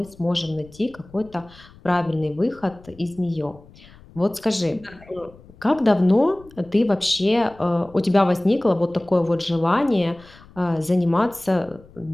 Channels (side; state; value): left; noise; rumble, 24 dB below the sound